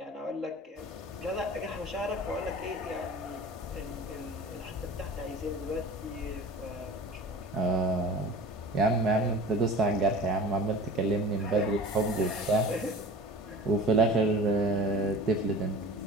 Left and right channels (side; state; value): both; normal; correlation 0.39